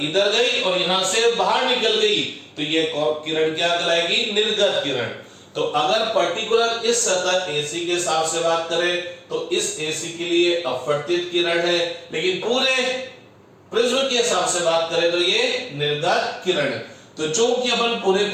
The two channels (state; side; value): identical; both; correlation 1.00